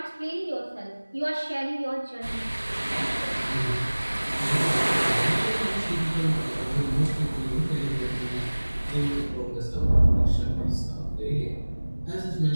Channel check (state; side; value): inverted; both; correlation -1.00